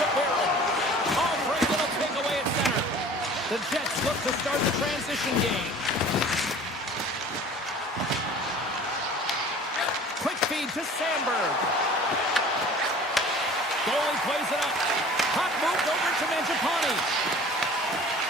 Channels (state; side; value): normal; both; correlation 0.45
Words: Barron. Albright little takeaway at center. The Jets look to start the transition game. Quick feed to Sandberg. Goalie plays it up. Puck moved over to Mangiapane.